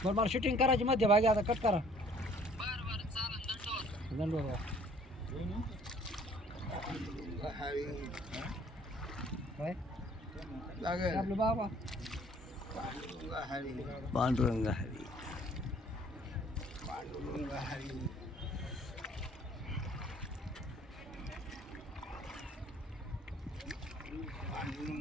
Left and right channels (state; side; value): normal; both; correlation 0.57